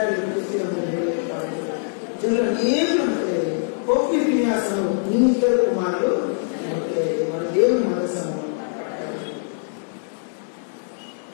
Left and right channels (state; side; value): silent; right; digital silence